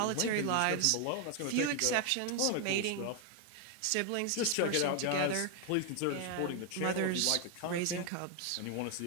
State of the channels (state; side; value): different; both; correlation 0.01